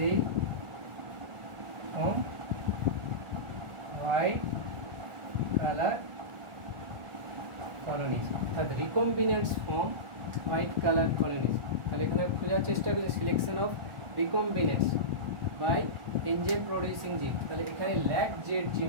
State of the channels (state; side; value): late; left; 1.4 ms